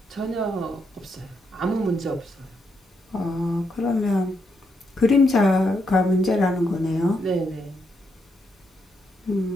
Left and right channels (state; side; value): normal; both; correlation 0.79